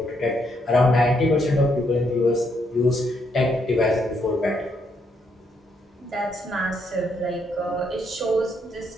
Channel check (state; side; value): normal; both; correlation 0.75